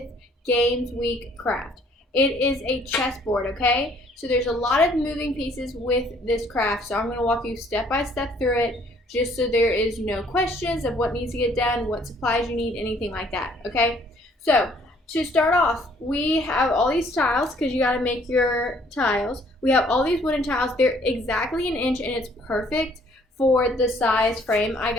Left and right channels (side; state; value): both; normal; correlation 0.61